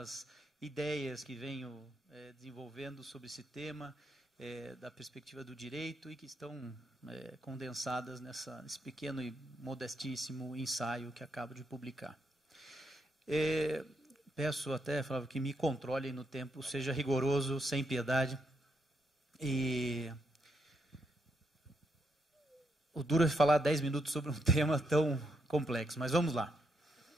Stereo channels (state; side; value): normal; both; correlation 0.78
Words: ideias que venho desenvolvendo sobre esse tema, da perspectiva do direito, e que estão condensadas nesse pequeno e modestíssimo ensaio que acabo de publicar. Peço até, Flávio, que me controlem no tempo, seja rigoroso, sem piedade. E o duro é falar 10 minutos sobre um tema tão complexo, mas vamos lá.